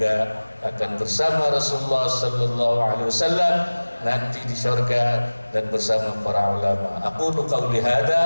akan bersama Rasulullah sallallahu alaihi wasallam nanti di surga dan bersama para ulama. Aqulu qawli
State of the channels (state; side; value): inverted; both; correlation -1.00